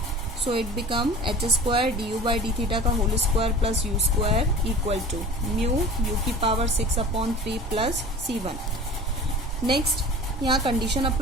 so it become h² du by D theta का whole square plus u² equal to mu u की power 6 upon 3 plus c1। Next यहाँ कंडीशन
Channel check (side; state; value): both; normal; correlation 0.39